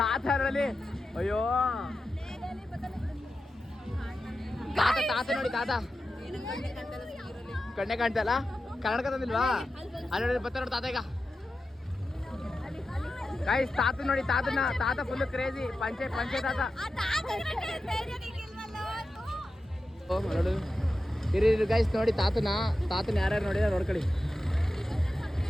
ಅಯ್ಯೋ ತಾತ ನೋಡಿ ತಾತ ಕಣ್ಣೆ ಕಾಣ್ತಲ್ಲ. ಕನ್ನಡಕ ತಂದಿಲ್ವಾ? ಅಲ್ಲಿ ಬರ್ತಾರೆ ನೋಡಿ ತಾತ. ಈಗ ಗೈಸ್ ತಾತ ನೋಡಿ ತಾತ ಫುಲ್ ಕ್ರೇಜಿ ಪಂಚೆ ತಾತ. ಓ ನೋಡು ಇರಿ ಗೈಸ್ ನೋಡಿ ತಾತನ ಯಾರ್ಯಾರು ನೋಡಿದ್ರೆ ನೋಡ್ಕೊಳ್ಳಿ.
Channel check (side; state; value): both; normal; correlation 0.92